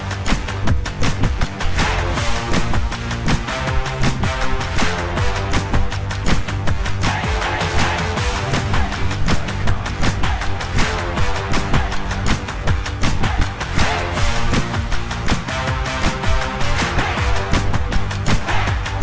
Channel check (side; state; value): both; identical; correlation 1.00